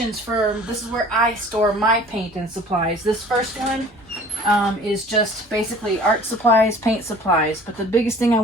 this is where I store my paint and supplies. This first one is just basically art supplies, paint supplies. But the biggest thing I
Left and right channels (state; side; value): normal; both; correlation 0.48